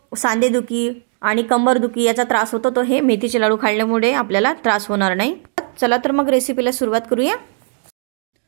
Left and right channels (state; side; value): silent; left; 64 dB below the other